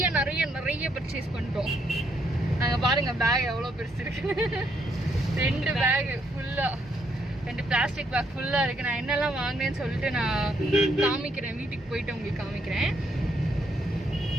பர்ச்சேஸ் பண்ணிட்டோம். நாங்கள் பாருங்க பேக் எவ்வளோ பெருசு இருக்கு. 2 பேக் ஃபுல்லாக, 2 பிளாஸ்டிக் பேக் ஃபுல்லாக இருக்குது. நான் என்னெல்லாம் வாங்கினேன்னு சொல்லிட்டு நான் காமிக்கிறேன், வீட்டுக்கு போயிட்டு உங்களுக்கு காமிக்கிறேன்.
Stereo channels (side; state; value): both; normal; correlation 0.73